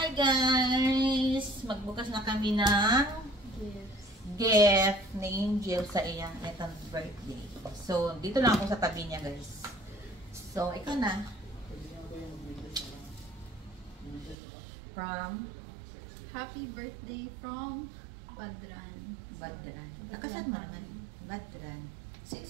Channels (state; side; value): drops out; left; at 14.4 s